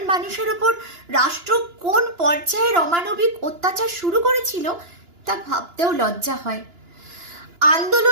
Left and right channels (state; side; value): late; left; 2.9 ms